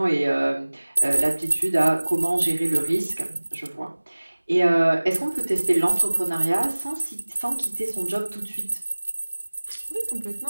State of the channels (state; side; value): inverted; both; correlation -1.00